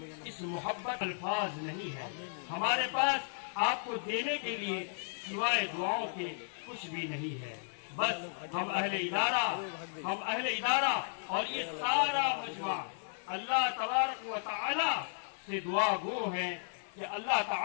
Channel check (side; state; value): right; silent; digital silence